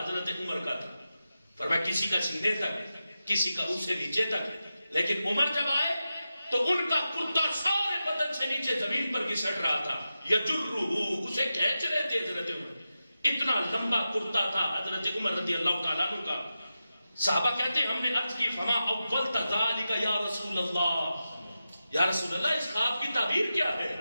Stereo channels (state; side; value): inverted; both; correlation -0.91